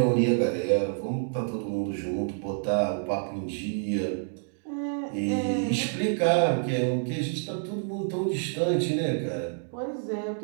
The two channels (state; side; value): silent; left; digital silence